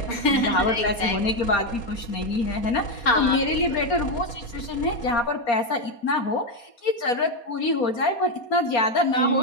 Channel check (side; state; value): right; late; 4.2 ms